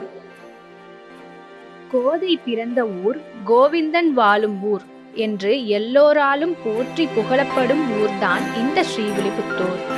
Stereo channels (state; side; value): identical; both; correlation 1.00